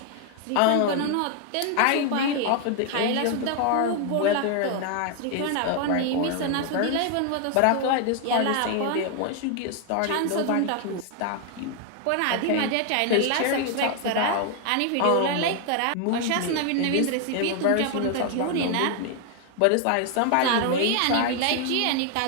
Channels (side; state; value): both; different; correlation 0.00